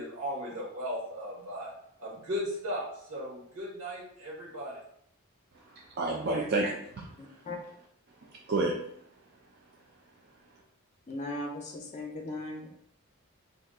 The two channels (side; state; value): both; normal; correlation 0.13